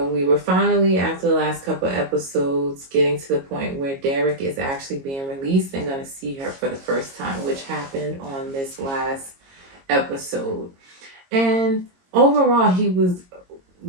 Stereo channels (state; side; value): late; left; 22 ms